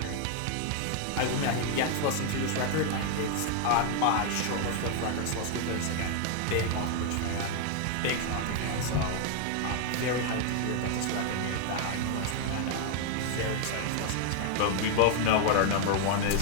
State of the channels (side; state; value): both; different; correlation 0.00